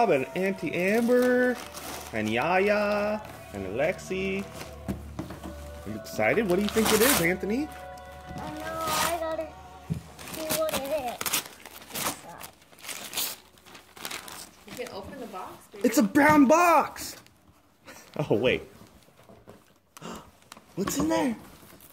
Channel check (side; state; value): both; identical; correlation 1.00